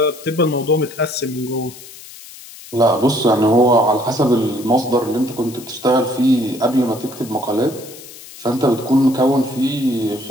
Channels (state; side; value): noise; left; hiss, 17 dB below the sound